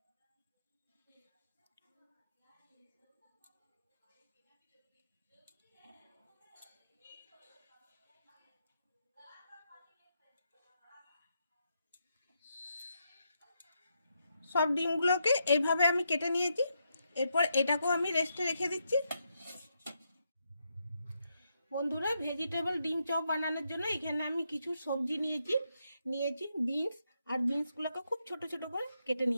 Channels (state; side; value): inverted; both; correlation -0.81